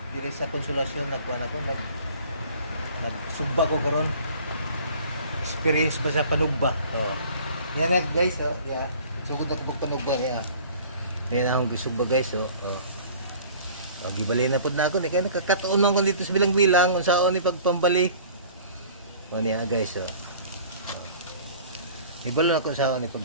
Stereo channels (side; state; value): both; inverted; correlation -0.47